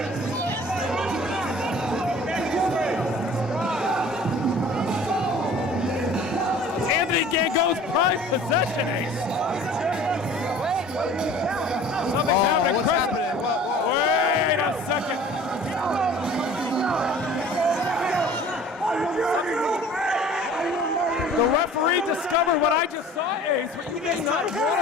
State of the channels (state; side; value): normal; both; correlation 0.46